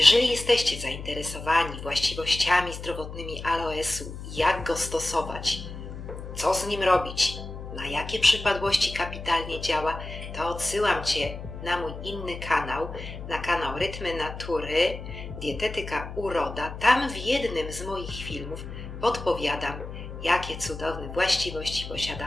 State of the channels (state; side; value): noise; left; hum, 10 dB below the sound